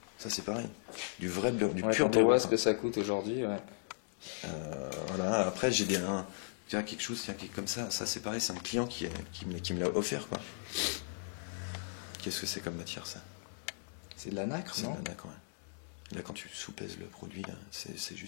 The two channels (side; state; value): right; silent; digital silence